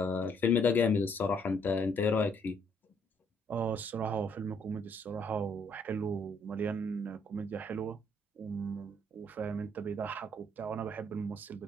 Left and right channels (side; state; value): both; normal; correlation 0.68